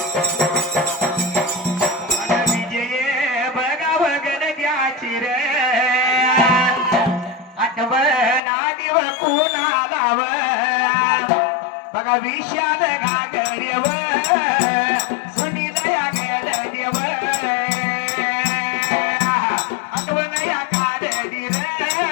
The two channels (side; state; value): right; drops out; at 8.4 s